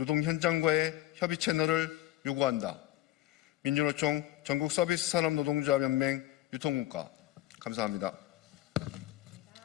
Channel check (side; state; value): right; quieter; 15.3 dB